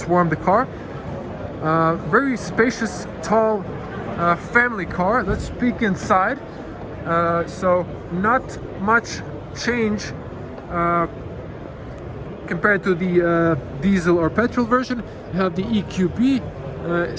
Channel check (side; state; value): both; identical; correlation 1.00